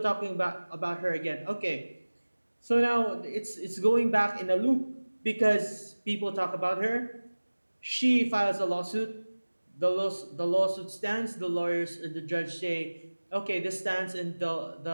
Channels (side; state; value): both; inverted; correlation -1.00